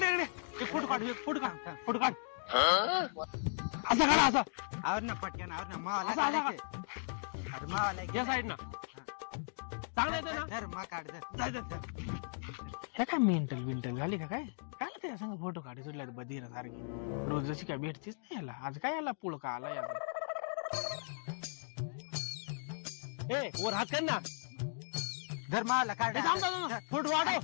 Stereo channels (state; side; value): silent; right; digital silence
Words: इकडे फोटो काढ फोटो काढ फोटो काढ असं काढा असं आवर ना पटकन आवर ना मावाला या साईड ना चांगलं येतं ना धर मा काढ हे काय मेंटल बिंटल झाली का काय? काय त्या संग फोटो काढी सुटल्या बधीर सारखी रोज जशी काय भेटतीच नाही याला. आज काय याला पुळका आला याला. वर हात कर ना धर मावाला काढ फोटो